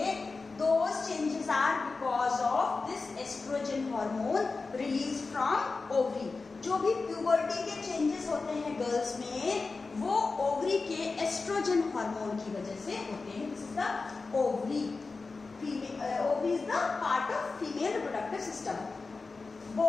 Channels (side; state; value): right; quieter; 4.0 dB